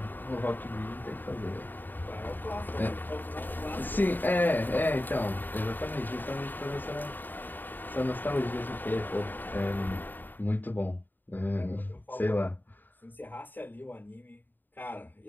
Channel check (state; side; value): late; right; 0.090 ms